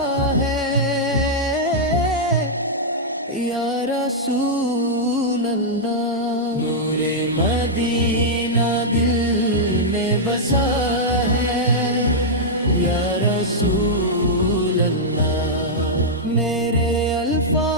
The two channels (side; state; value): both; normal; correlation -0.08